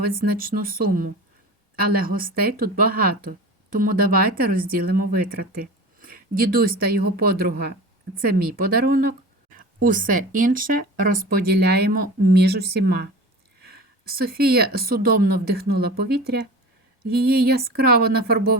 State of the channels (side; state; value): both; normal; correlation 0.34